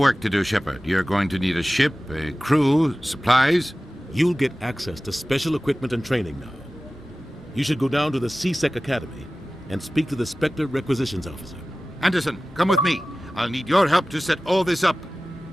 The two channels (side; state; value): both; normal; correlation 0.96